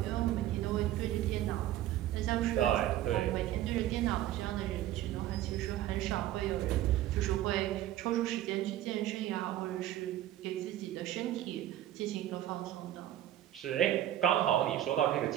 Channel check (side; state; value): left; quieter; 12.9 dB